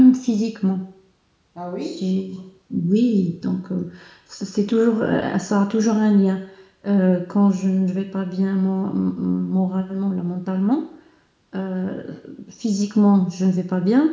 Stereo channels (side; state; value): both; identical; correlation 1.00